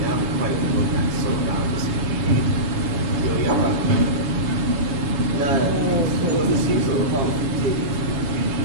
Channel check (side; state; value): left; late; 7.0 ms